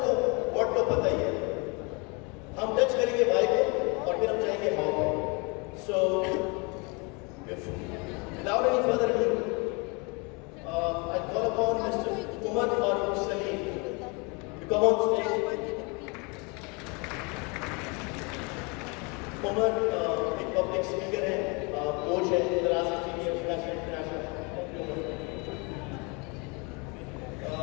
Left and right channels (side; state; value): right; quieter; 30.6 dB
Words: व्हाट तो पता ही है, हम टच करेंगे वाई को और फिर हम जाएंगे हाउ को। सो without any further ado, I call upon Mr. Umar Farooq Salim to come on stage. Umar एक पब्लिक स्पीकर है, कोच है, international.